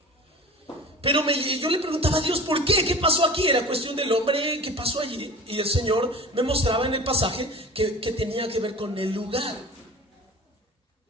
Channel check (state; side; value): normal; both; correlation 0.38